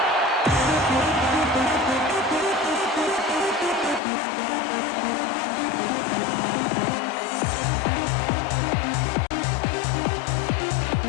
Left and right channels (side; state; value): right; drops out; at 4.0 s